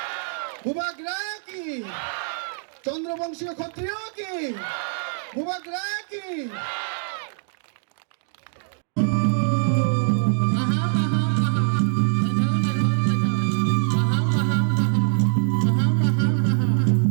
ভূভাগরা কি, চন্দ্রবংশীয় ক্ষত্রিয় কি, ভূভাগরা কি।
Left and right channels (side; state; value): left; silent; digital silence